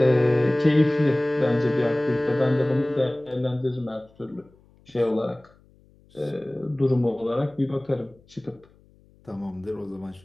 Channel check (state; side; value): noise; left; hum, 30 dB below the sound